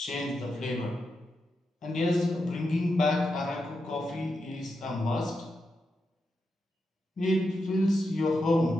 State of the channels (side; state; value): both; normal; correlation 0.87